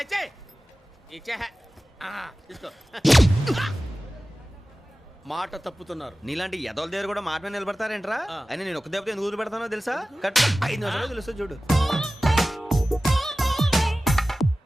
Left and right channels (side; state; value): both; normal; correlation 0.96